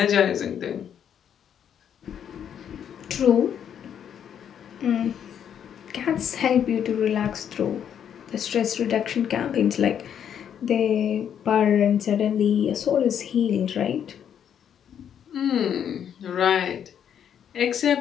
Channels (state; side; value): quieter; right; 8.8 dB